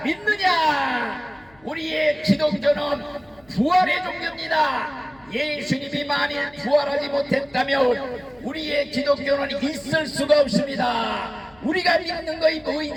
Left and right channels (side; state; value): left; noise; hum, 29 dB below the sound